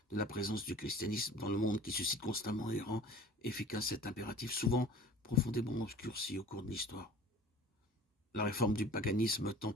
de la présence du christianisme dans le monde qui suscite constamment et rend efficace cet impératif, souvent profondément obscurci au cours de l'histoire. La réforme du paganisme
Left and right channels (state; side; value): normal; both; correlation 0.44